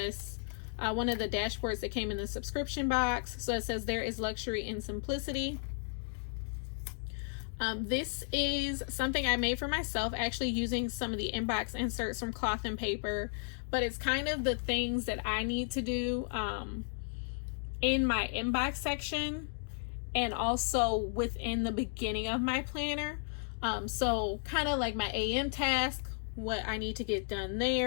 one of the dashboards that came in the subscription box. So it says there is luxury in simplicity. This is something I made for myself, actually using some of the inbox inserts from Cloth&Paper, but it's kind of the things that I need to do in my inbox section and also within the beginning of my planner. So kind of like my AM task, what I need to get done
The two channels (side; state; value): right; silent; 55 dB below the other